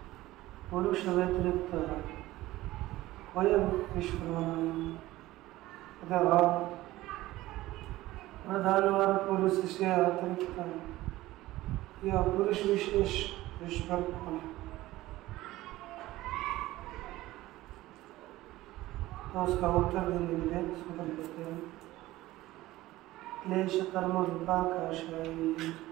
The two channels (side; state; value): left; quieter; 17.1 dB